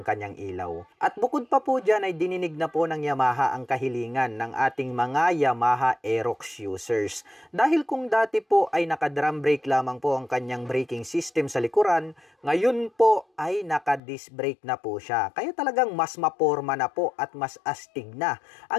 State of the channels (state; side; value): drops out; right; at 14.0 s